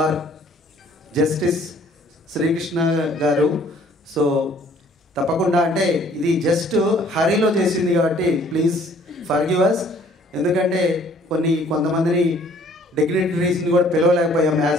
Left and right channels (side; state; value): both; normal; correlation 0.57